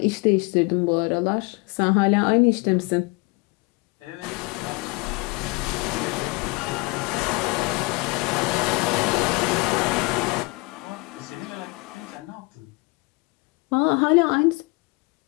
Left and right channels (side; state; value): right; quieter; 27.1 dB